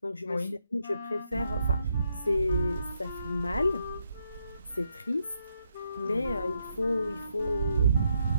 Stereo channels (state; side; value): inverted; both; correlation -0.78